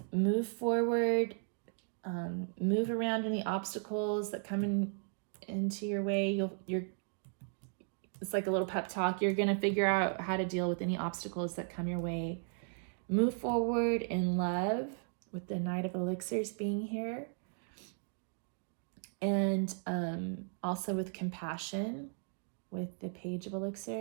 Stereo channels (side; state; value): left; silent; 54 dB below the other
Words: move forward, move around any obstacles that come into your way. It's like a little pep talk. You're going to figure out how to deal with any obstacles that come your way. Move forward in love with the Knight of Elixirs being here. And also with compassion with the Page of